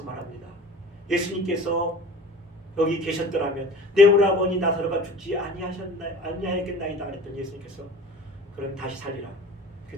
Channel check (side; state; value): both; normal; correlation 0.41